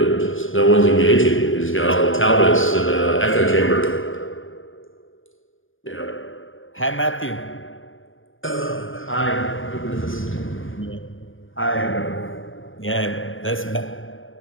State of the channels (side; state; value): right; late; 0.58 ms